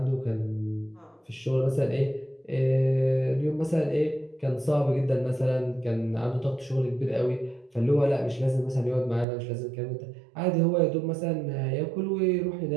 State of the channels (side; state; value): left; drops out; at 9.2 s